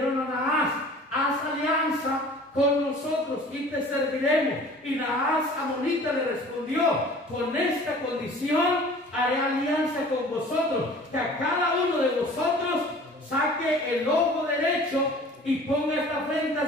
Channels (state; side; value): normal; both; correlation 0.46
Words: a Naas, haz alianza con nosotros y te serviremos. Y Naas amonita le respondió, con esta condición haré alianza con vosotros, que a cada uno de vosotros saque el ojo derecho y ponga esta